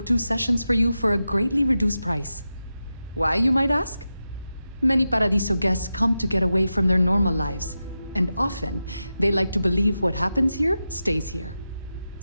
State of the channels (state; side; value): inverted; both; correlation -0.91